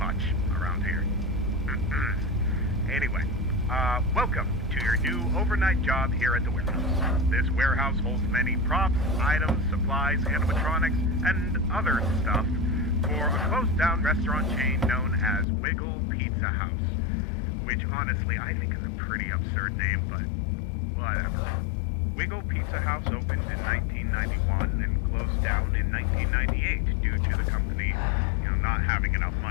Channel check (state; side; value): drops out; right; at 15.5 s